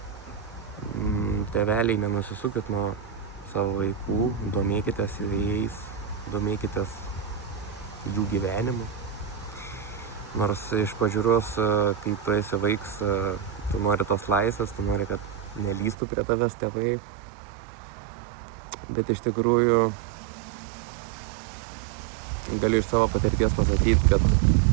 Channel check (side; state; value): left; drops out; at 16.0 s